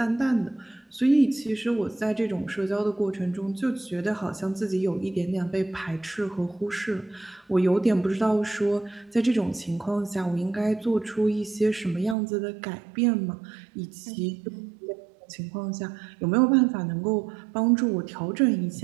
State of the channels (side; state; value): left; drops out; at 12.2 s